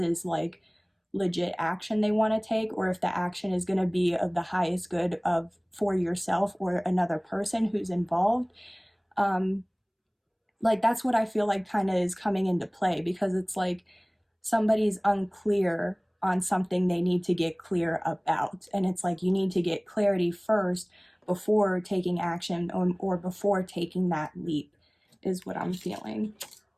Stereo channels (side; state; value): both; identical; correlation 1.00